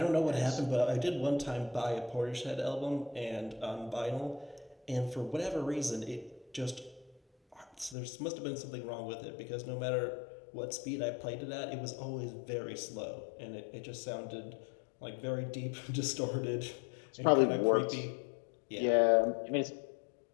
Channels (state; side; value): drops out; right; at 8.0 s